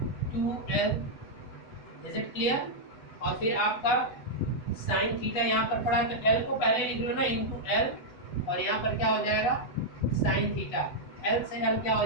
2l। Is it clear. और फिर आपका साइन थीटा यहाँ पर पड़ा, तो l को पहले लिख लो ना, इनटू l, और यहाँ पर क्या हो जाएगा साइन थीटा, l से l क्या हो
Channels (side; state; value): right; late; 8.0 ms